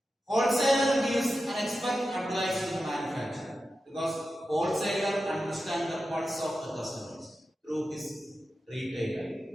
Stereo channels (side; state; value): both; normal; correlation 0.91